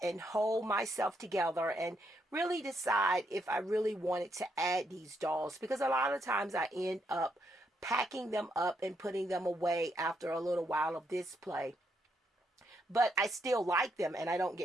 and hold myself together and really decide if I really wanted to add these dolls, because a lot of times I end up packing them up and putting them away after a little while of display. But I still like them and I don't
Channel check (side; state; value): both; normal; correlation 0.77